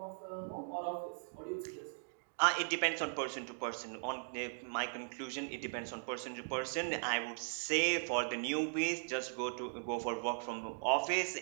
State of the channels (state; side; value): silent; left; digital silence